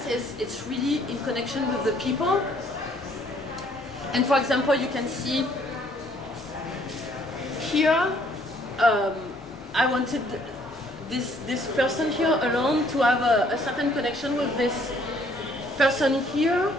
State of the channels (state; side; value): normal; both; correlation 0.63